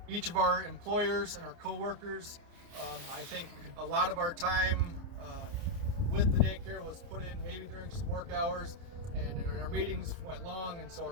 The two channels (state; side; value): late; left; 29 ms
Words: each of our employers and our co-workers. I think a lot of our time with the daycare was put in maybe during some work hours, and our meetings went long, and so our